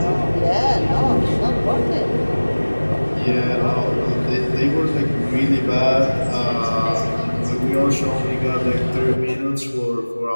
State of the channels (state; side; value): inverted; both; correlation -1.00